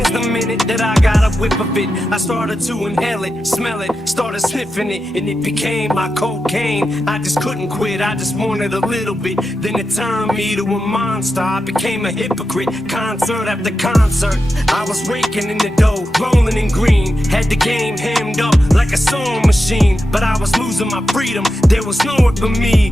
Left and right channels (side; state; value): both; normal; correlation 0.89